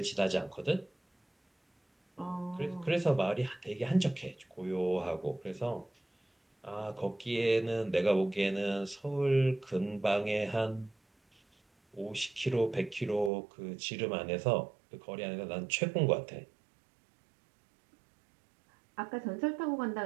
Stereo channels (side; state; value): left; drops out; at 13.3 s